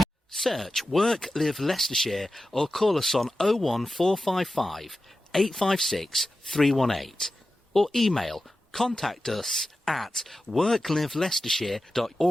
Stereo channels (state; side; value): normal; both; correlation 0.93